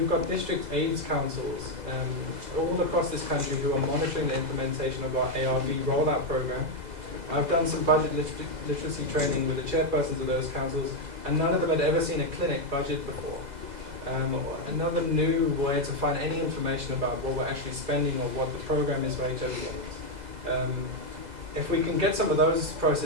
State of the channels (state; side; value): late; left; 2.0 ms